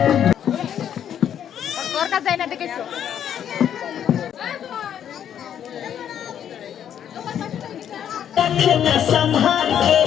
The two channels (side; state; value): right; quieter; 9.5 dB